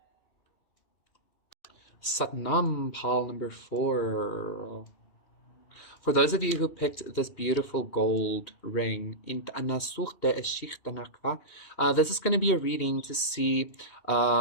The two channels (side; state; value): right; late; 2.8 ms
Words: Satnam, pal number four. For those of you who picked this beautiful gold ring, this is going to be a reading to see